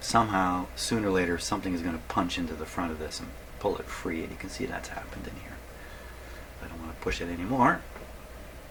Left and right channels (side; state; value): both; identical; correlation 1.00